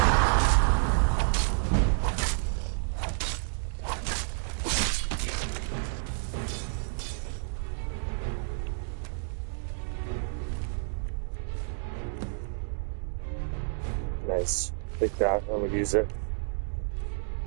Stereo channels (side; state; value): left; silent; 58 dB below the other